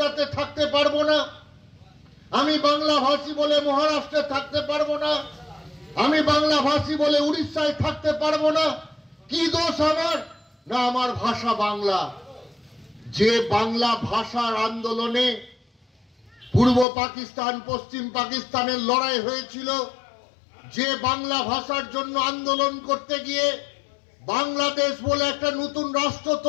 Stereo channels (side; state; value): right; drops out; at 16.9 s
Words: থাকতে পারবো না, আমি বাংলা ভাষী বলে মহারাষ্ট্রে থাকতে পারবো না, আমি বাংলা ভাষী বলে উড়িষ্যায় থাকতে পারবো না। কি দোষ আমার? না, আমার ভাষা বাংলা। যে বাংলা ভাষার আন্দোলনে পূর্ব পাকিস্তান পশ্চিম পাকিস্তানের লড়াই হয়েছিল, যে বাংলা ভাষার জন্য আন্দোলন করতে গিয়ে বাংলাদেশ বলে একটা নতুন রাষ্ট্র